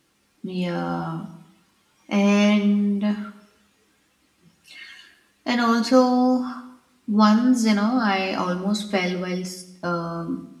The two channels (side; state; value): both; identical; correlation 1.00